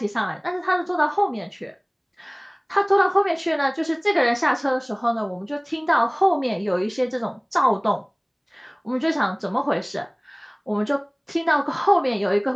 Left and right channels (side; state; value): both; identical; correlation 1.00